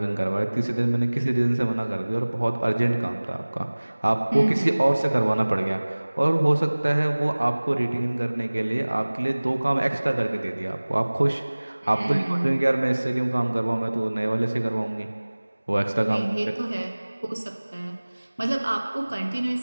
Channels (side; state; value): both; inverted; correlation -1.00